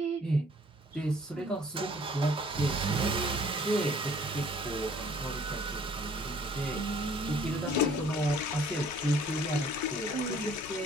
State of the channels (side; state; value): both; normal; correlation 0.56